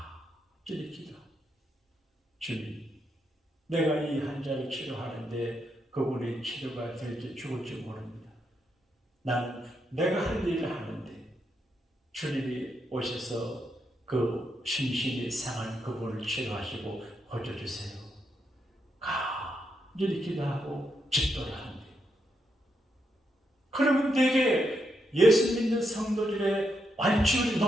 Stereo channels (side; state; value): both; normal; correlation 0.81